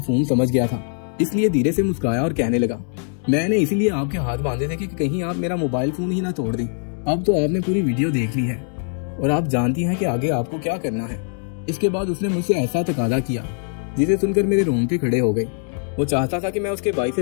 समझ गया था, इसलिए धीरे से मुस्कुराया और कहने लगा, मैंने इसीलिए आपके हाथ बांधे थे कि कहीं आप मेरा मोबाइल फोन ही ना तोड़ दें। अब तो आपने पूरी वीडियो देख ली है और आप जानती हैं कि आगे आपको क्या करना है। इसके बाद उसने मुझसे ऐसा तकादा किया जिसे सुनकर मेरे रोंगटे खड़े हो गए। वो चाहता था कि मैं उसके भाई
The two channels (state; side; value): silent; right; 57 dB below the other